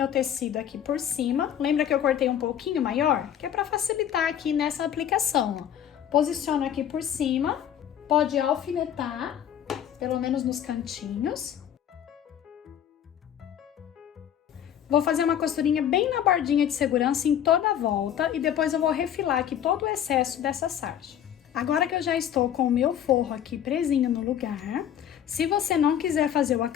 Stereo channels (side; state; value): right; quieter; 9.9 dB